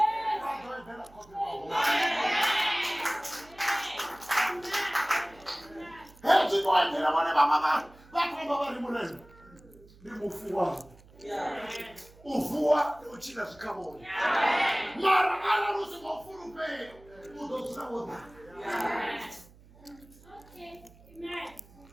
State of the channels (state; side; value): noise; right; hum, 24 dB below the sound